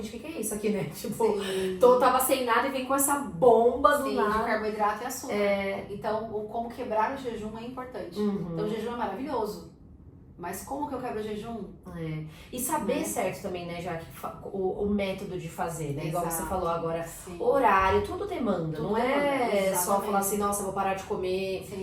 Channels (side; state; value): both; identical; correlation 1.00